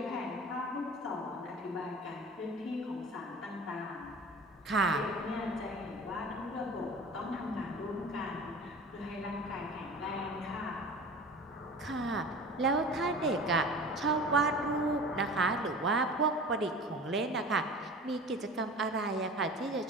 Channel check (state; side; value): normal; both; correlation 0.38